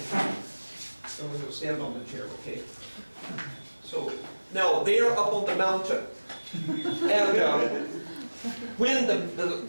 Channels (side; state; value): both; inverted; correlation -1.00